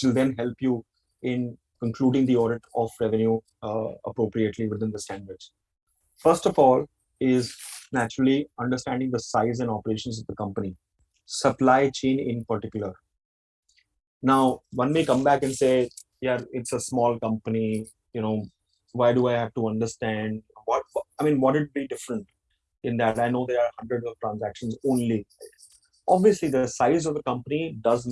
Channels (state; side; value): identical; both; correlation 1.00